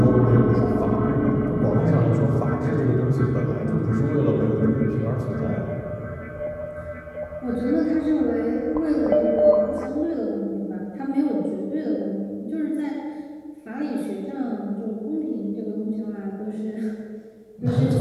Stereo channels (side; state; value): both; identical; correlation 1.00